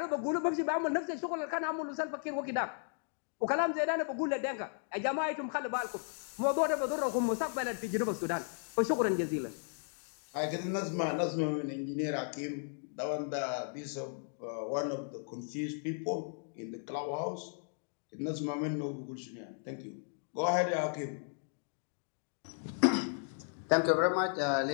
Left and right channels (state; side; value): silent; right; 54 dB below the other